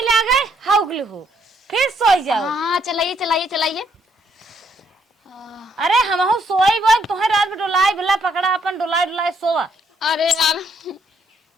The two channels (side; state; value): both; normal; correlation 0.70